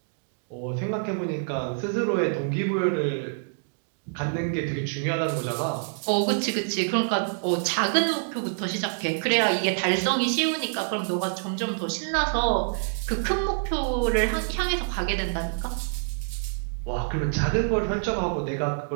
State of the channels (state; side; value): silent; left; digital silence